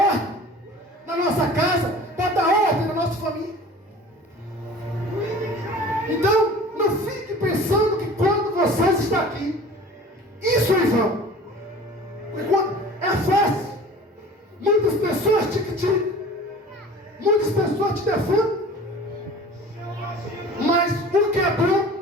na nossa casa, para dar ordem na nossa família. Então, não fique pensando que quando vocês estão aqui, isso é em vão. Porque quando é fácil, muitas pessoas te criticam, muitas pessoas te defendem, mas o que é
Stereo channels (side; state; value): both; normal; correlation 0.42